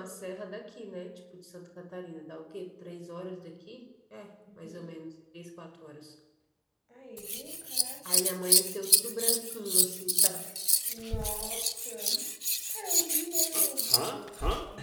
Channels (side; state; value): both; identical; correlation 1.00